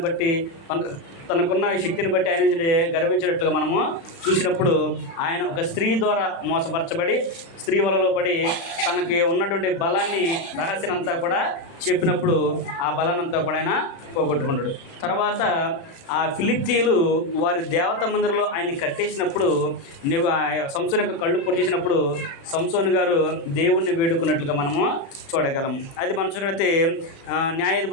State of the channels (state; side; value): late; right; 36 ms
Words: బట్టి, తనకున్న శక్తిని బట్టి ఆయన గర్వించినట్లుగా మనము చూసినప్పుడు ఆయన ఒక స్త్రీ ద్వారా మోసపరచబడి స్త్రీ వలలో పడి తనకి ఉన్నటువంటి బలాన్ని రహస్యాన్నంతా కూడా చెప్పినప్పుడు ఆ బలాన్నంతా కూడా ఆయన పోగొట్టుకుంటాడు. తర్వాత ఆ ఫిలిష్తీయులు వారి దేవత మందిరంలో ఆయన్ని కట్టేసినప్పుడు సంసోను యొక్క కళ్ళు పొడిచేసినప్పుడు సంసోను గారు దేవుణ్ణి వేడుకున్నట్లుగా మనము చూడగలము. అది మనం చూసినట్లయితే